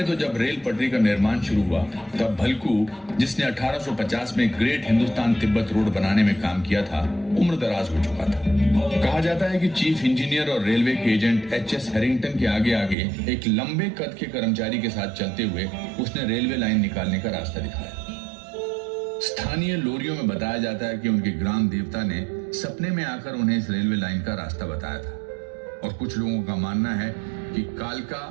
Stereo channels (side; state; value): left; drops out; at 13.0 s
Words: तो जब रेल पटरी का निर्माण शुरू हुआ तब भलकू, जिसने 1850 में ग्रेट हिंदुस्तान तिब्बत रोड बनाने में काम किया था, उम्र दराज हो चुका था कहा जाता है कि चीफ इंजीनियर और रेलवे के एजेंट एच.एस. हैरिंगटन के आगे आगे एक लंबे कद के कर्मचारी के साथ चलते हुए उसने रेलवे लाइन निकालने का रास्ता दिखाया। स्थानीय लोरियों में बताया जाता है कि उनके ग्राम देवता ने सपने में आकर उन्हें इस रेलवे लाइन का रास्ता बताया था और कुछ लोगों का मानना है कि कालका